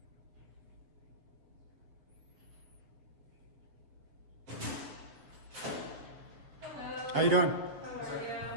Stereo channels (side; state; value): left; late; 7.6 ms